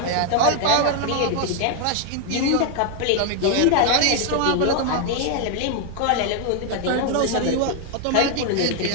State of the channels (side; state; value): both; different; correlation 0.00